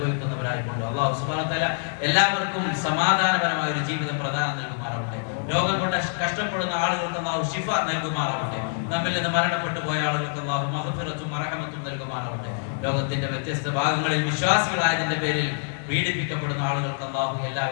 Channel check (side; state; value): right; silent; digital silence